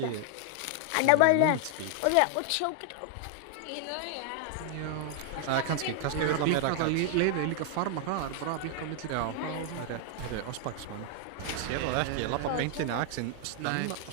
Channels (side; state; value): both; different; correlation 0.00